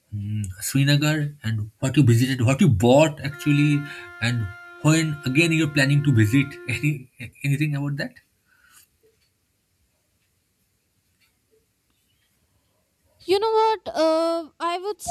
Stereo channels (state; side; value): identical; both; correlation 1.00